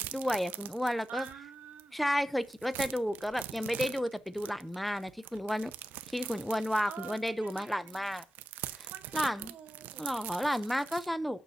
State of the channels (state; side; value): normal; both; correlation 0.92